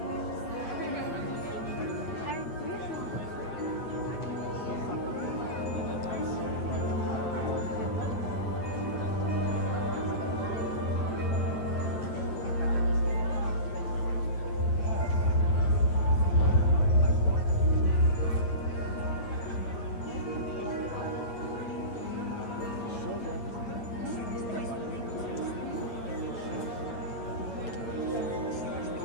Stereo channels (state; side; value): late; right; 9.2 ms